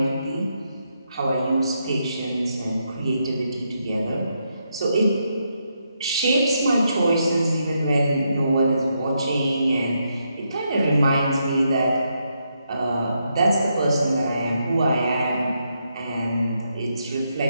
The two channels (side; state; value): both; inverted; correlation -0.80